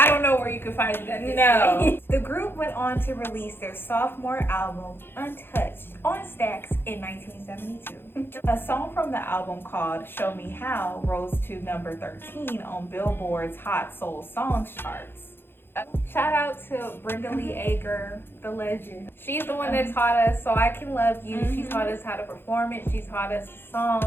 don't know where you can find it at this No. The group went on to release their sophomore album, Untouched, on Stax in 1972. A song from the album called Show Me How rose to number 13 on Billboard's Hot Soul Songs charts. Shout out to Brenda Lee Ager, the legend. She's the one that taught us So I Can Love You. She taught us how to perform it. She taught us the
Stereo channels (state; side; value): late; right; 0.10 ms